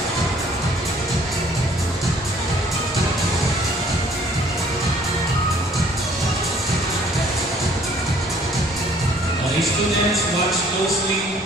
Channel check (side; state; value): both; normal; correlation 0.58